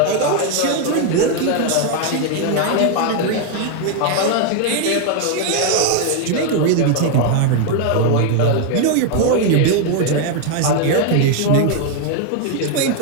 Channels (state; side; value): different; both; correlation 0.00